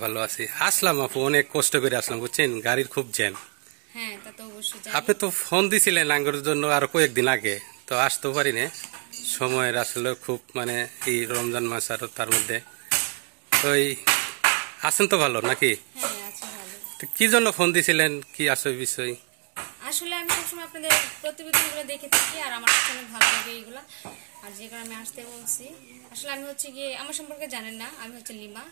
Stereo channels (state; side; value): quieter; left; 35.8 dB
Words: ভালো আছি। আসলাম আপু, অনেক কষ্ট করে আসলাম, বুঝছেন, গাড়ির খুব জ্যাম। হ্যাঁ, তা তো অবশ্যই আপনি জানি। তো ফোন দিছিলেন আঙ্গুর জন্য আরো কয়েকদিন আগে, তো আসতেও পারি না। সময়ের আসলে খুব এই রমজান মাস আর তার মধ্যে তো আছেন তো ভালো নাকি? হ্যাঁ, আছি ভালো। তো কি জন্য ফোন দিছিলেন, কি আসলে বিষয়? আসলে আমি সবসময় আপনাদের প্রতিবেদনগুলো দেখে থাকি আর আমার কাছে অনেক ভালো লাগে এইগুলা। আর যে কারণে আমি আসতে বলছি। আসলে আমি হচ্ছে গিয়ে আমার সম্পর্কে জানেন না, আমি হচ্ছে লিমা।